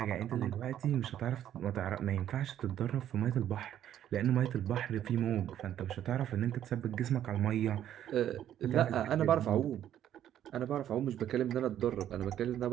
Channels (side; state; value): left; quieter; 11.0 dB